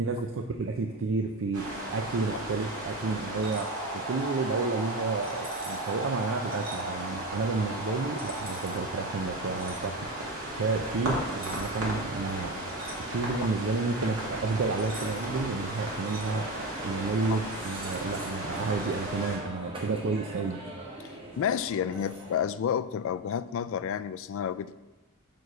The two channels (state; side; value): normal; both; correlation 0.19